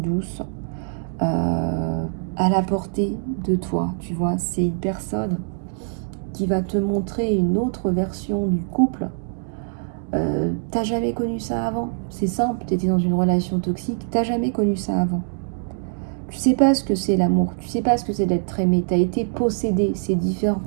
à la portée de toi. Tu vois, c'est une personne qui va te montrer une autre version du couple. T'as jamais connu ça avant. C'est simple, tu étais dans une relation toxique, t'as jamais connu ça avant. Tu sais pas ce que c'est l'amour, tu sais pas ce que c'est d'être aimé, tu as été possédé, c'est différent,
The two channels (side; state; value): left; silent; digital silence